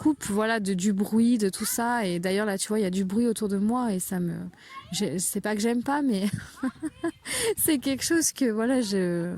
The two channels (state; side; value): identical; both; correlation 1.00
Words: voilà du bruit, de tout ça. Et d'ailleurs là tu vois il y a du bruit autour de moi et c'est pas que j'aime pas, mais c'est quelque chose que